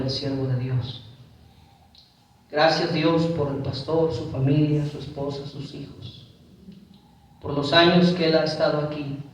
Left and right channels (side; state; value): both; identical; correlation 1.00